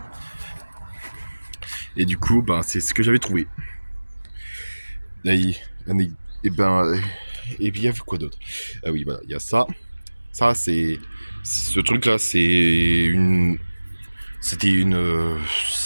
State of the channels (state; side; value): inverted; both; correlation -1.00